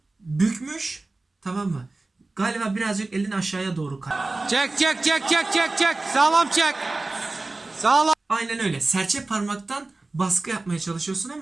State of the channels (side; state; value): left; quieter; 3.2 dB